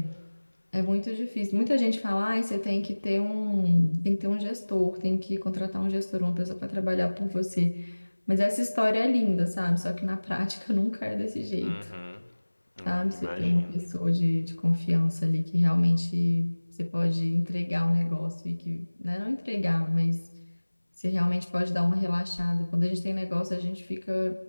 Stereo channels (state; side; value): inverted; both; correlation -1.00